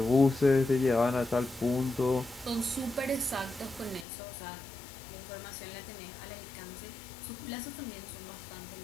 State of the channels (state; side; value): drops out; right; at 4.0 s